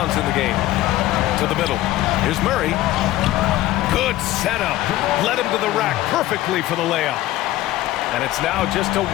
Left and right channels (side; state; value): right; quieter; 15.6 dB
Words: in the game. To the middle. Here's Murray. Good setup. Led him to the rack perfectly for the layup. And it's now just a